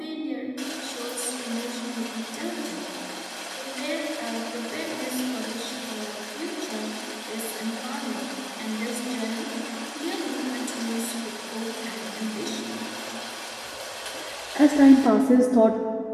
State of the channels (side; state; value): both; identical; correlation 1.00